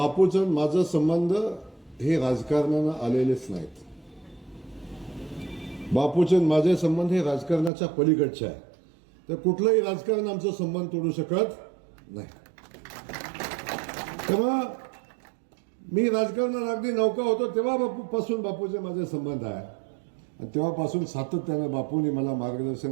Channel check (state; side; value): drops out; left; at 7.7 s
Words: माझं संबंध हे राजकारणानं आलेलेच नाहीत. बापूचे माझे संबंध हे राजकारणाच्या पलीकडचे आहे. तर कुठलंही राजकारण आमचा संबंध तोडू शकत नाही. तेव्हा मी राजकारणात अगदी नौका होतो तेव्हा बापूपासून बापूचे माझे संबंध आहे. आणि तेव्हापासून सातत्याने बापूंनी मला